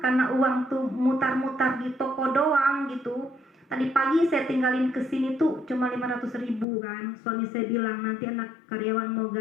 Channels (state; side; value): drops out; right; at 6.7 s